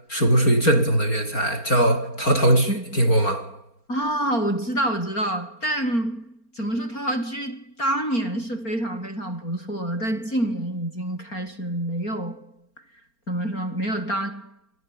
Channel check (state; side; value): late; right; 4.4 ms